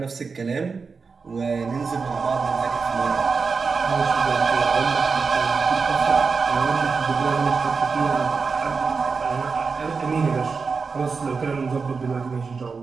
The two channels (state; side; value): quieter; left; 4.9 dB